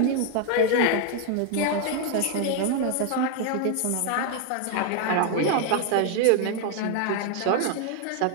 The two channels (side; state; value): both; different; correlation 0.00